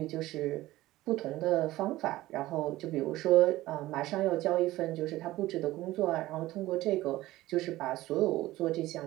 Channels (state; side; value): quieter; left; 16.9 dB